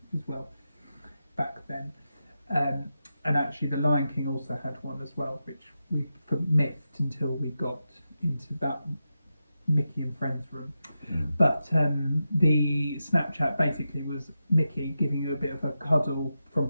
as well back then. And actually, the Lion King also had one as well, which we missed until we got into that Mickey and Friends room. But the Snapchat basically was Mickey giving you a bit of a cuddle from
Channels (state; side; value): inverted; both; correlation -0.89